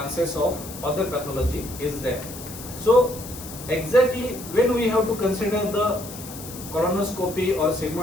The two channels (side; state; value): left; noise; hiss, 13 dB below the sound